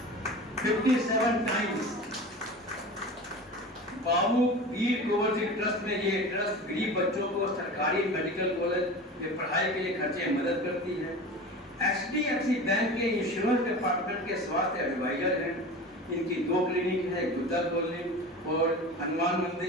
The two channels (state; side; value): normal; both; correlation 0.33